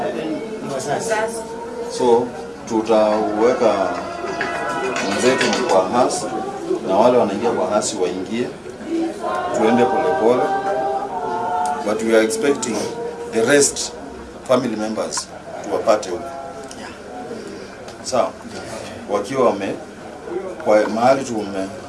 So tutaweka mwenzetu kwa house na wale wanaingia kwa house waingie. Tuende polepole. But we are expecting the rest family members tuwapate huko. Sawa. Wakiwa kwa mahali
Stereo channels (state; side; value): identical; both; correlation 1.00